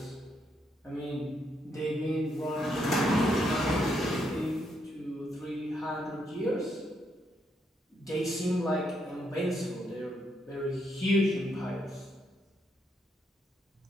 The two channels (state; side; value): normal; both; correlation 0.77